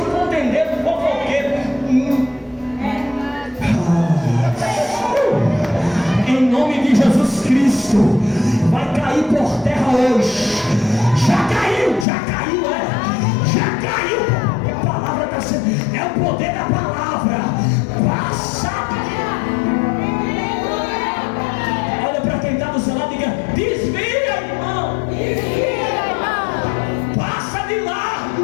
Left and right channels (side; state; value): right; drops out; at 12.1 s